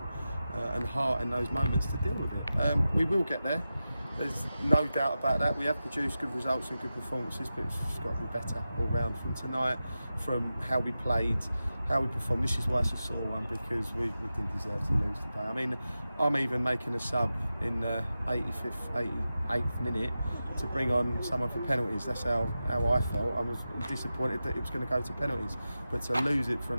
and heart in those moments to deal with it. We will get there. There's no doubt about that. We have produced good results and good performances, but it's just got to be better all round from tonight, from how we played, how we performed. This is why it's a sore one, because we didn't deserve to lose today. I mean, I'm even making a sub in the 88th minute to bring on someone for penalties. That's how I felt. I was disappointed that it was going to go to penalties, but to lose it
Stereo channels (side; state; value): both; inverted; correlation -0.93